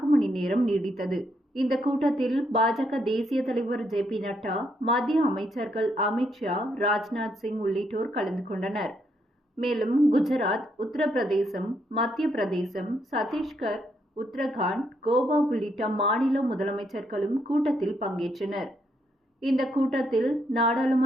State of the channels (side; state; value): both; normal; correlation 0.76